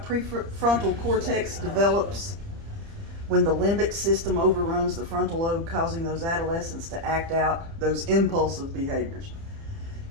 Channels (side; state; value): left; late; 30 ms